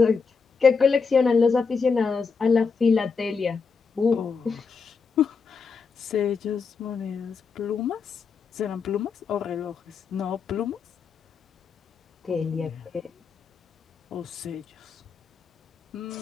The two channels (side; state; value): right; quieter; 5.2 dB